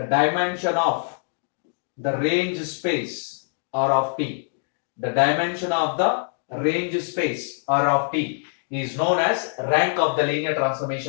dimension of the range space R of t. The dimension of the range space R of t is known as rank of the linear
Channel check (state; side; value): silent; right; digital silence